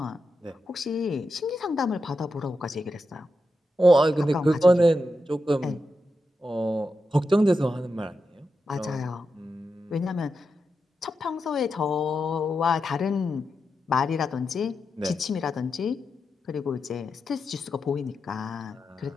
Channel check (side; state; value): both; normal; correlation 0.87